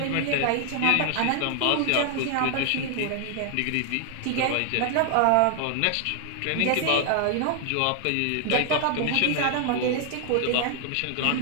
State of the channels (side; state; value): both; different; correlation 0.00